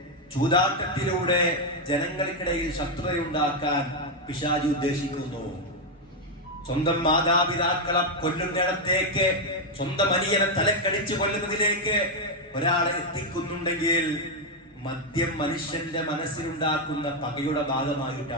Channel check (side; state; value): both; normal; correlation 0.03